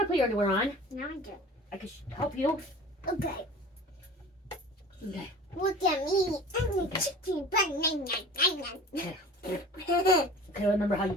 to put your underwear on. Now I do. I can help you. Okay. Okay. Look at me. I'm a chicken banana. Okay, remember how you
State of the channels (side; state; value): both; normal; correlation 0.41